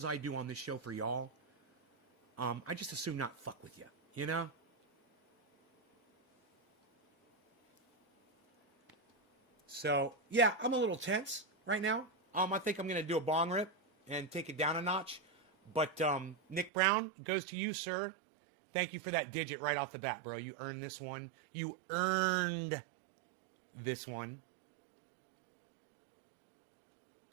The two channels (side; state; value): left; drops out; at 16.7 s